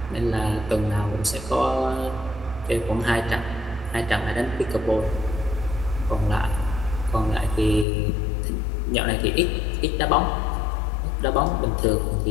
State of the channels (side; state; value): right; drops out; at 7.9 s